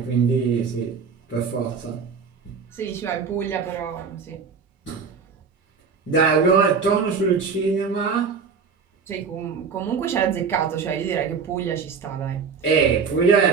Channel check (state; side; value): quieter; left; 5.6 dB